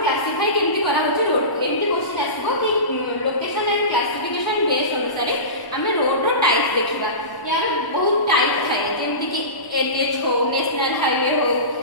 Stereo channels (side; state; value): right; late; 1.0 ms